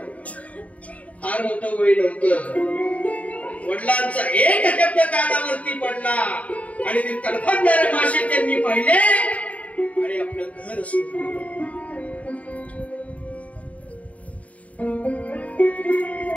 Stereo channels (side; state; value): right; late; 0.068 ms